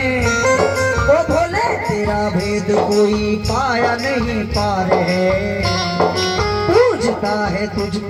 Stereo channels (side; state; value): both; identical; correlation 1.00